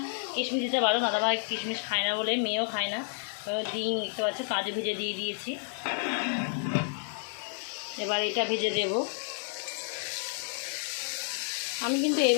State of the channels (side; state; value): right; silent; 57 dB below the other